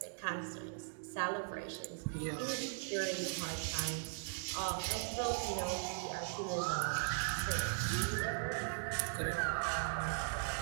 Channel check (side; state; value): left; silent; digital silence